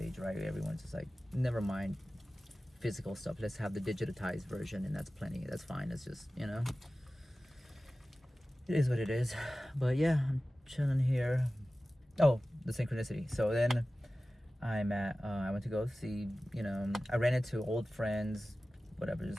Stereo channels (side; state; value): both; normal; correlation 0.96